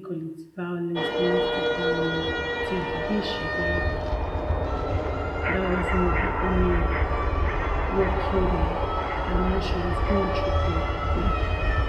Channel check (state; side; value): identical; both; correlation 1.00